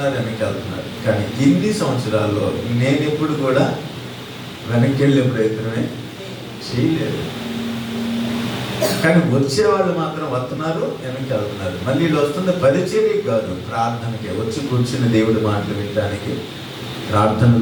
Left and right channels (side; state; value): both; identical; correlation 1.00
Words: కానీ ఇన్ని సంవత్సరాల్లో నేను ఎప్పుడు కూడా వెనక్కి వెళ్ళే ప్రయత్నమే చేయలేదు. కానీ వచ్చేవాళ్ళు మాత్రం వస్తున్నారు, వెనక్కి వెళ్తున్నారు. మళ్ళీ వీళ్ళు వస్తున్న పరిచర్య కాదు, ప్రార్థనకి వచ్చి కూర్చుని దేవుడి మాటలు వినడానికి,